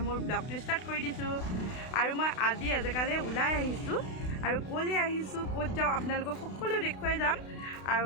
মোৰ ব্লগটো ষ্টাৰ্ট কৰি দিছোঁ। আৰু মই আজি এজেগালৈ ওলাই আহিছোঁ আৰু ক'লৈ আহিছোঁ, ক'ত যাওঁ আপোনালোকক সকলো দেখুৱাই যাম।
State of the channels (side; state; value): right; late; 32 ms